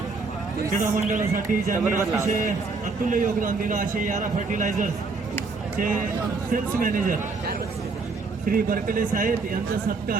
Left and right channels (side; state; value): left; quieter; 4.2 dB